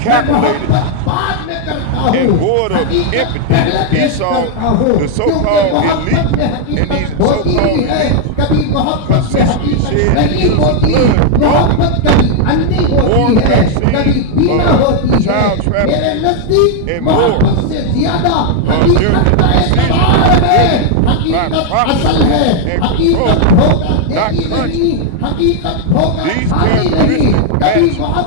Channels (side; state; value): both; different; correlation 0.00